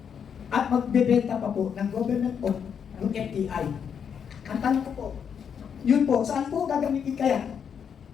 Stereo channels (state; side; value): quieter; right; 7.4 dB